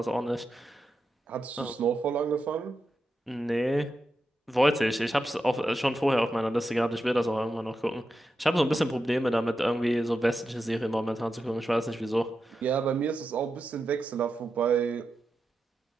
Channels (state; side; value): normal; both; correlation 0.89